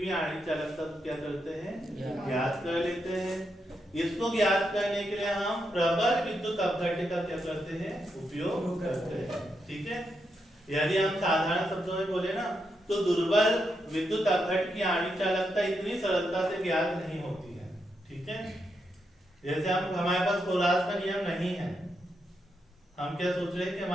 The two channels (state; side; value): normal; both; correlation 0.83